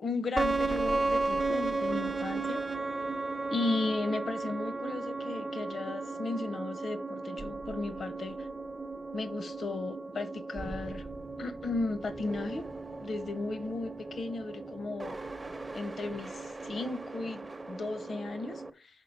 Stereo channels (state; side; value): normal; both; correlation 0.87